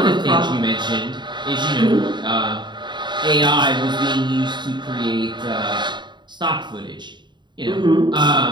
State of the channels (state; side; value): late; left; 0.22 ms